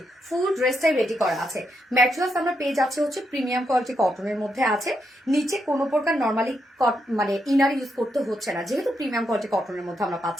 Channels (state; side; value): normal; both; correlation 0.81